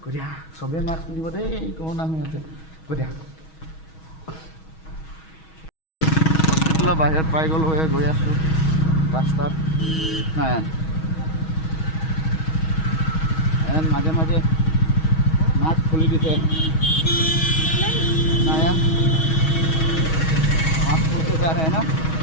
গতিকে চবেই মাস্ক পিন্ধিব দেই, কৰোণা হৈ আছে। গতিকে হস্পিটেলৰ বাহিৰত পাই গ'লোঁ, গৈ আছোঁ ৰাস্তাত। নাই মাজে মাজে মাস্ক খুলি দিছে, নায়ান মাস্ক খুলতে যা ৰে না।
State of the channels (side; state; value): right; late; 6.3 ms